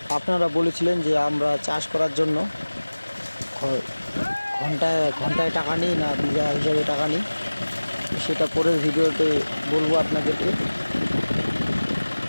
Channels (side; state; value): both; inverted; correlation -1.00